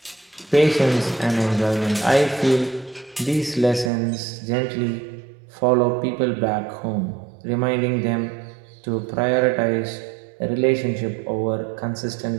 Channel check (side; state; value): left; drops out; at 3.9 s